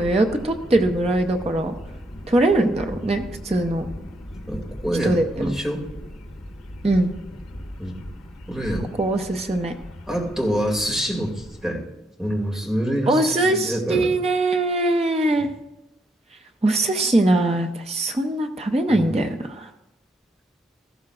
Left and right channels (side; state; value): both; normal; correlation 0.76